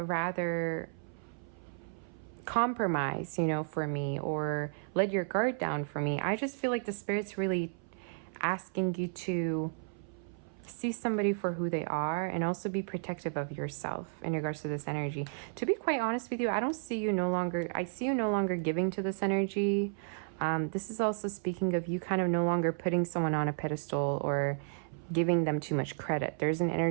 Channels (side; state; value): left; silent; 56 dB below the other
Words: compromise, you know, for me, or let your guard down for me. I just feel like the Spirit's really asking you to see somebody for who they are and also be protective of yourself in regards to this energy. To be quite honest with you, I see you no longer giving to this energy. This is also speaking of you kind of no longer putting someone on a pedestal or giving them too much credit. There's an